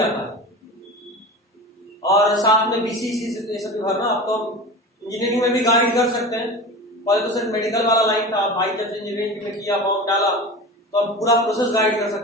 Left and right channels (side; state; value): both; normal; correlation 0.31